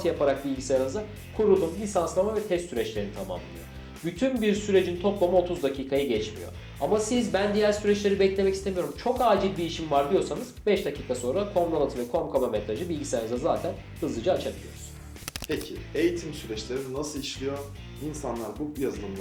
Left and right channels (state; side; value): identical; both; correlation 1.00